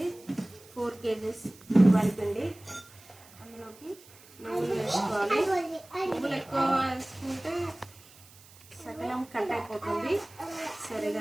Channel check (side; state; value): right; noise; hiss, 23 dB below the sound